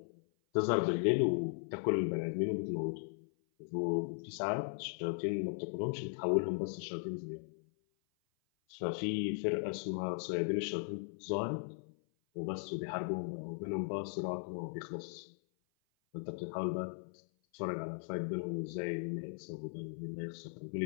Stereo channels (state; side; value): silent; right; 53 dB below the other